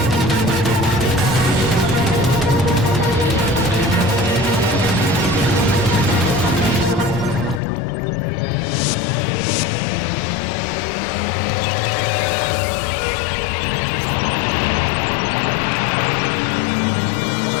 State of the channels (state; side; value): drops out; right; at 7.6 s